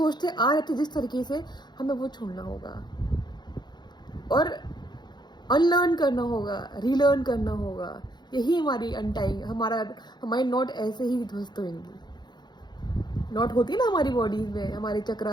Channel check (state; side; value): late; right; 0.21 ms